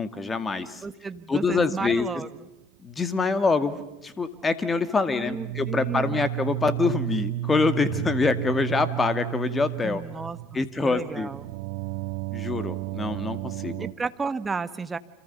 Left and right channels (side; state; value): both; normal; correlation 0.68